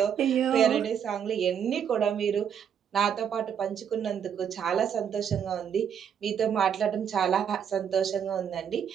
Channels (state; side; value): quieter; left; 8.2 dB